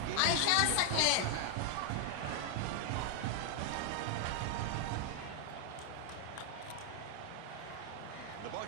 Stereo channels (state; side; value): different; both; correlation 0.00